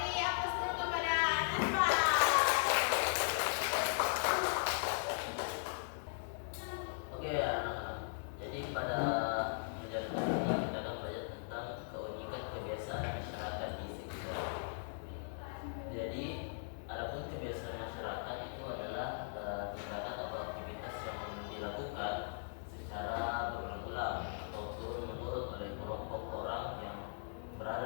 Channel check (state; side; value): silent; right; digital silence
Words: aplaus dulu kepada Nasma. Oke ya anak-anak. Jadi pada pelajaran kali ini kita akan belajar tentang keunikan kebiasaan masyarakat di sekitar. Jadi adapun kebiasaan masyarakat itu adalah tindakan atau aktivitas yang dilakukan secara berulang-ulang atau turun-menurun oleh kelompok orang yang